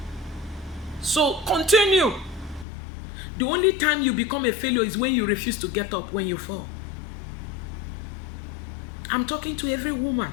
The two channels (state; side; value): drops out; right; at 2.7 s